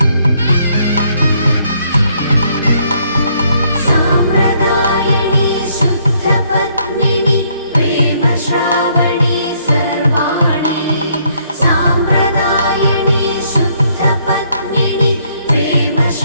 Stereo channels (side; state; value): both; inverted; correlation -0.69